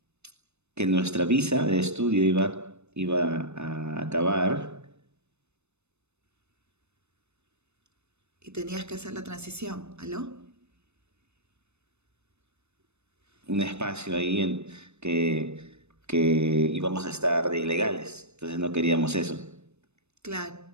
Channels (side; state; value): left; late; 0.81 ms